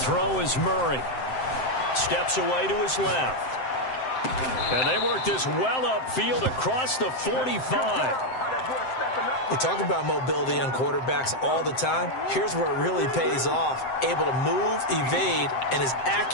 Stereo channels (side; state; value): right; late; 7.7 ms